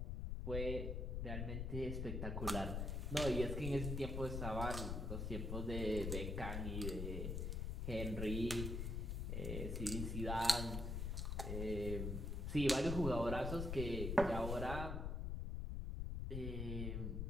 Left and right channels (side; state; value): left; noise; rumble, 1 dB below the sound